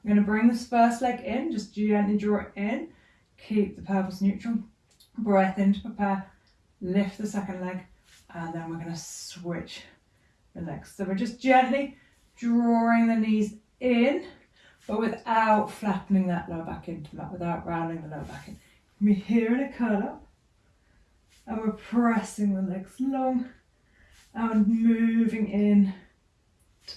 I'm going to bring this first leg in, just gently draw it in. Keep the pelvis neutral. Breath in to prepare. Lift the second leg. And then we're going to switch the legs. So we're just gently drawing the knees in, but without flattening that lower back into that, without rounding the lower back in. We're here in a curl up, and we're pressing the legs long and moving in to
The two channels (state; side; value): identical; both; correlation 1.00